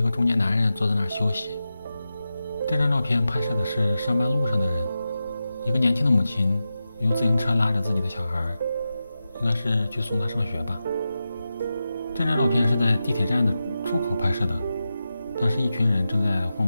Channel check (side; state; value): both; inverted; correlation -0.91